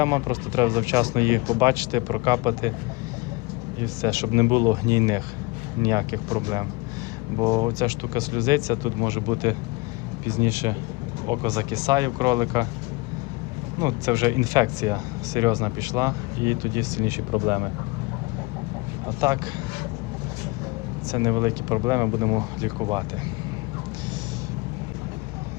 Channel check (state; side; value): quieter; right; 24.6 dB